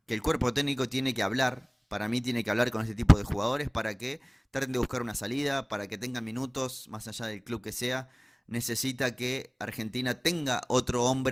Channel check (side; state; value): both; identical; correlation 1.00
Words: que el cuerpo técnico tiene que hablar. Para mí tiene que hablar con este tipo de jugadores para que traten de buscar una salida, para que tengan minutos, más allá del club que sea. Necesita que Argentina tenga otro